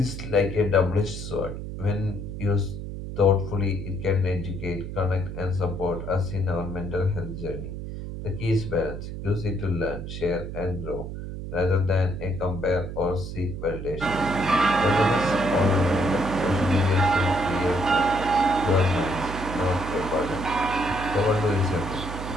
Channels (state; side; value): noise; right; hum, 7 dB below the sound